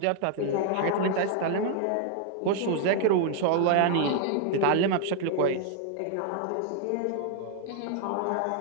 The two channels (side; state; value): both; different; correlation 0.00